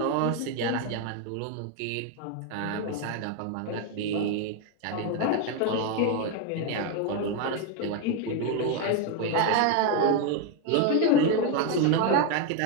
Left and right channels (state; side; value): different; both; correlation 0.01